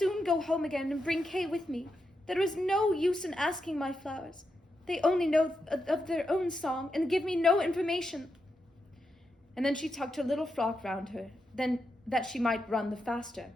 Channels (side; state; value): both; normal; correlation 0.85